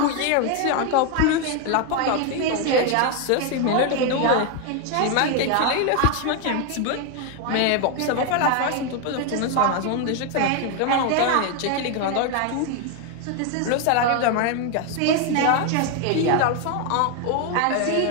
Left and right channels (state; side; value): different; both; correlation 0.01